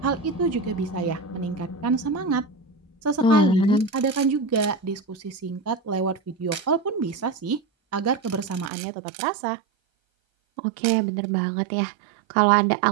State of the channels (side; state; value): left; drops out; at 8.7 s